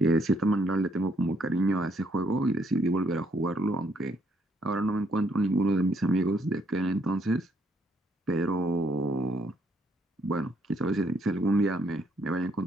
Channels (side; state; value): both; normal; correlation 0.71